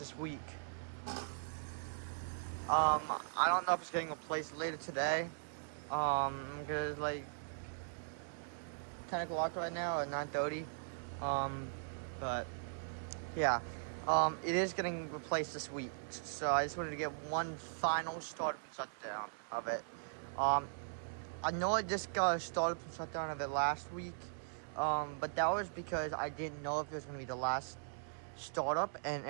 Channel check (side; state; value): left; silent; digital silence